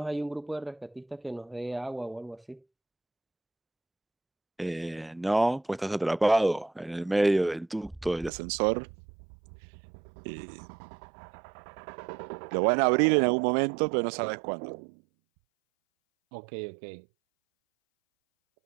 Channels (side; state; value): left; drops out; at 8.3 s